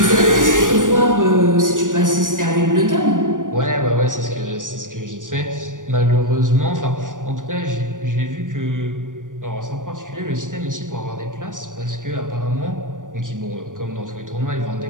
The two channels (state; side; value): late; left; 0.88 ms